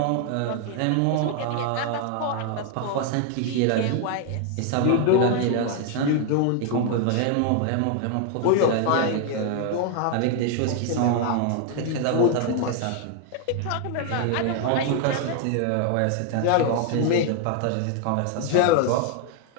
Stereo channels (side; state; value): both; different; correlation 0.00